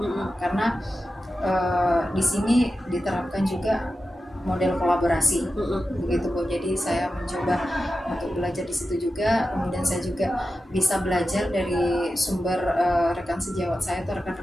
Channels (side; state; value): both; normal; correlation 0.92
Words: Karena di sini diterapkan juga model kolaborasi, begitu Bu. Jadi saya mencoba untuk belajar di situ juga. Kemudian saya juga bisa belajar dari sumber rekan sejawat saya atau